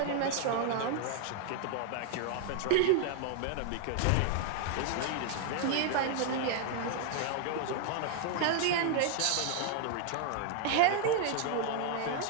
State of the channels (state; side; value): different; both; correlation 0.00